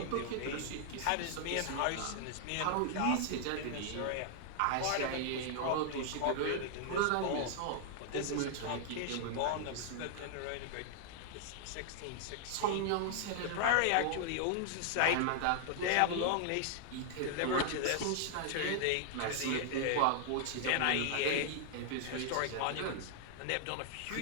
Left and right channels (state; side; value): different; both; correlation -0.01